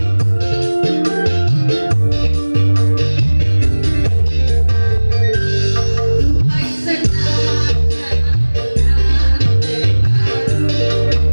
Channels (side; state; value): both; inverted; correlation -1.00